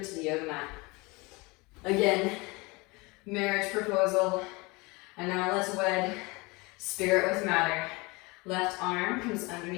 the yoga mat. Again, marriage proposal. And now let's wed spirit with matter. Left arm comes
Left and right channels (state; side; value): quieter; right; 25.5 dB